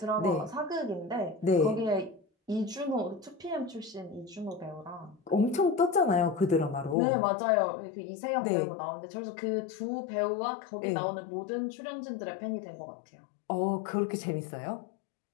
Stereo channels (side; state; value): right; drops out; at 7.0 s